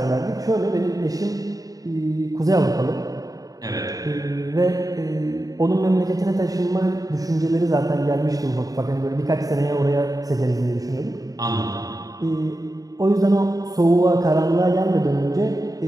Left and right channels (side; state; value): left; late; 0.18 ms